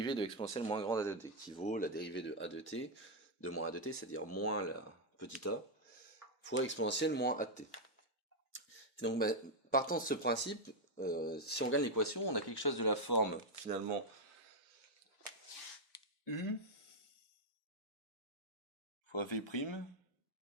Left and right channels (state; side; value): normal; both; correlation 0.00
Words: de l'exponentielle moins grande a de t, qui vaut la dérivée de a de t, de moins a de t, c'est-à-dire moins la petite a, fois exponentielle moins a de t. Et donc, partant de ce principe, si on gagne l'équation, on a quelque chose de la forme, finalement, u fois v'